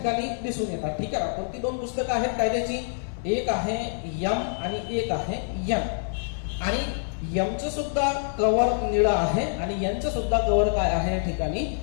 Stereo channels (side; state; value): right; silent; digital silence